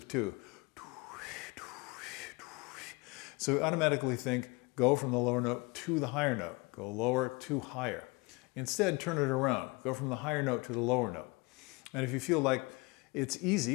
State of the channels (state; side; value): quieter; right; 26.4 dB